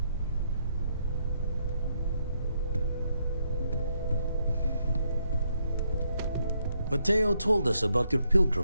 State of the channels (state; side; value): inverted; both; correlation -0.76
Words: Mateo told us about your